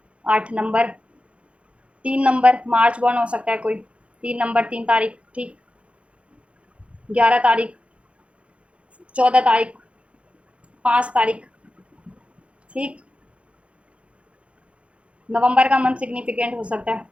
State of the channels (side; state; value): left; late; 0.061 ms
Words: 8 नंबर, 3 नंबर मार्च बॉर्न हो सकता है कोई, 3 नंबर, 3 तारीख, ठीक, 11 तारीख, 14 तारीख, 5 तारीख, ठीक। नवंबर का मंथ सिग्निफिकेंट हो सकता है,